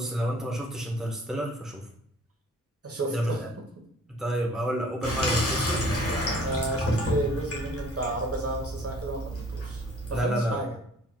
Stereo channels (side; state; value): both; normal; correlation 0.54